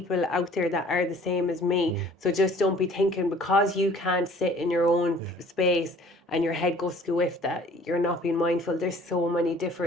out there that are the same as me. So just don't be thinking because you can't sit in your own space and your head goes squiff that you're not being mindful. There's so many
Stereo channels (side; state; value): both; normal; correlation 0.52